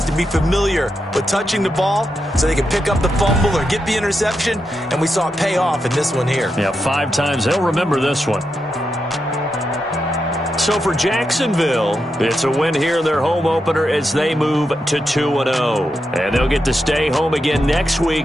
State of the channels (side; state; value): both; normal; correlation 0.86